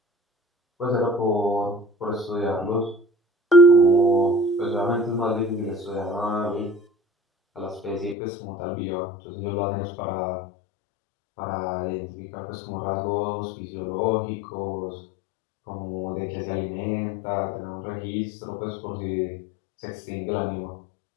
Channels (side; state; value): right; drops out; at 8.2 s